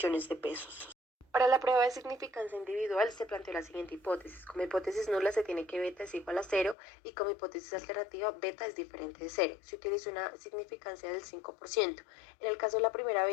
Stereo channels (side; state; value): right; drops out; at 6.8 s